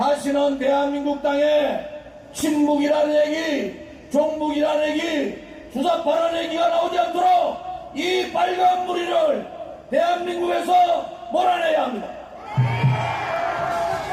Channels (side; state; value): both; identical; correlation 1.00